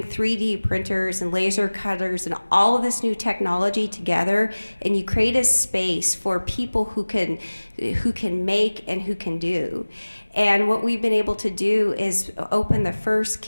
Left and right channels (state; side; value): inverted; both; correlation -1.00